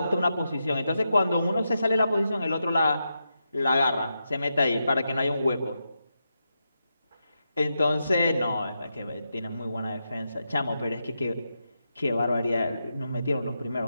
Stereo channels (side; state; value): both; inverted; correlation -0.86